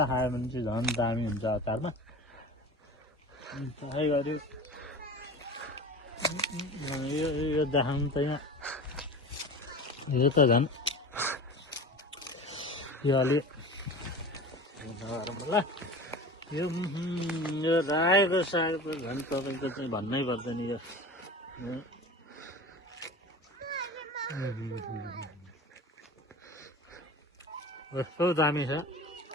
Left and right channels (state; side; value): normal; both; correlation 0.34